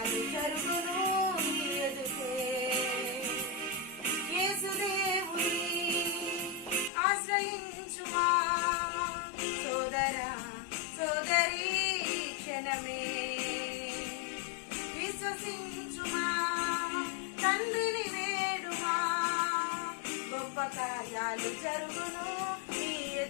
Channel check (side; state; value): right; drops out; at 6.9 s